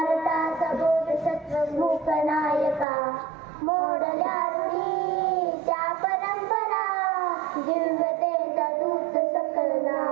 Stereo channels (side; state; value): left; drops out; at 2.9 s